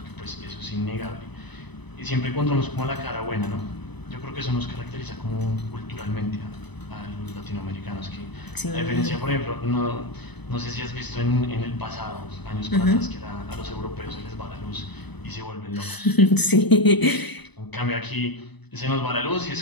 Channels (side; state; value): right; late; 1.0 ms